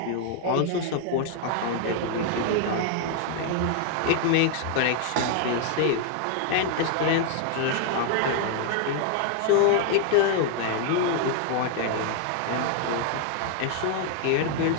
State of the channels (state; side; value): different; both; correlation 0.00